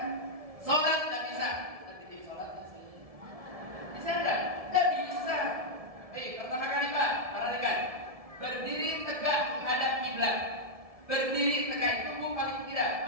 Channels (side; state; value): left; late; 1.7 ms